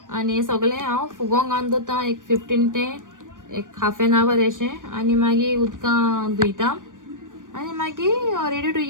आनी सगळें हांव फुगोंक घालून दवरता एक 15 ते एक हाफ एन आवर अशें आनी मागीर उदकां धुयता आनी मागीर रेडी टू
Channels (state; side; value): late; left; 0.88 ms